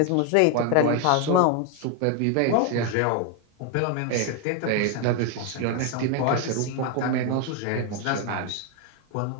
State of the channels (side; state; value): both; different; correlation 0.01